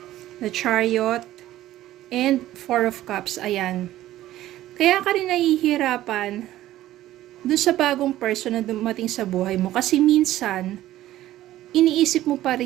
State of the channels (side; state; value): left; quieter; 14.3 dB